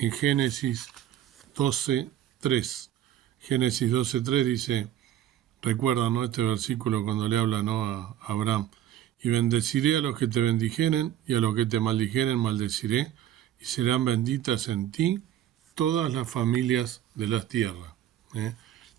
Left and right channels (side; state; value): left; quieter; 11.6 dB